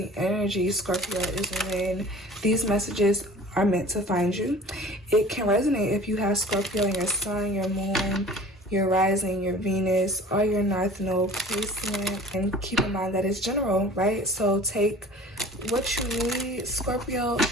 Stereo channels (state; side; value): normal; both; correlation 0.45